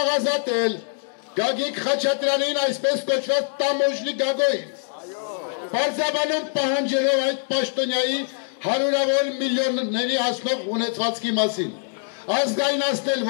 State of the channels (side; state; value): right; silent; 63 dB below the other